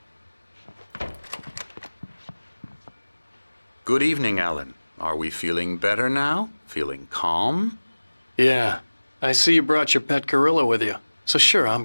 Good evening, Alan. Are we feeling better now? Feeling calm? Yeah, I see you brought your pet gorilla with you. So sure,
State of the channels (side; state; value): both; inverted; correlation -1.00